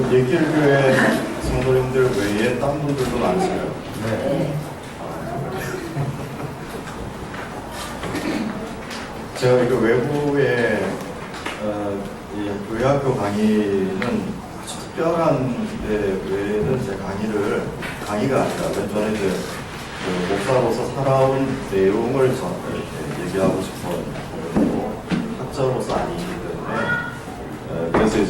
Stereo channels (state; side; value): identical; both; correlation 1.00